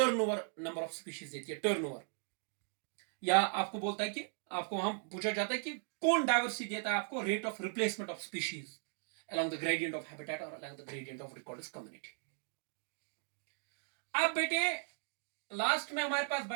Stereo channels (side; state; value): left; silent; 53 dB below the other